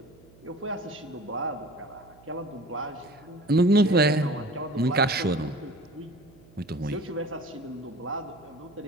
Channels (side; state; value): right; noise; hum, 25 dB below the sound